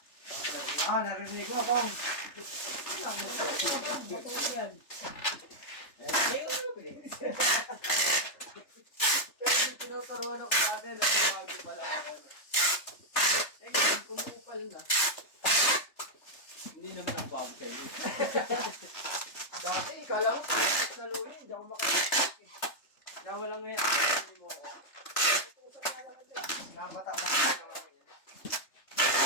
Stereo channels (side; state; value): right; late; 3.3 ms